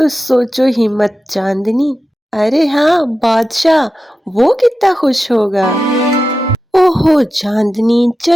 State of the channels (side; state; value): both; normal; correlation 0.92